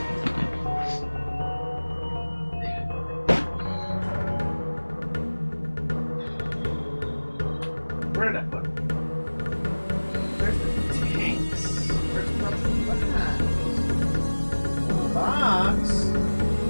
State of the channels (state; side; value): inverted; both; correlation -1.00